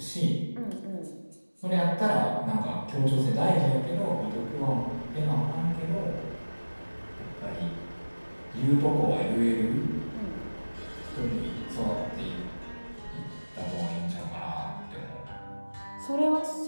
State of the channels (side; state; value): both; inverted; correlation -1.00